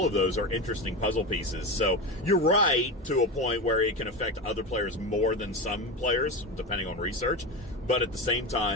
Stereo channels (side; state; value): both; normal; correlation 0.21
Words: of those are interesting puzzle pieces. So you're right to a point where it can affect other players more than some players, depending on research, but at the same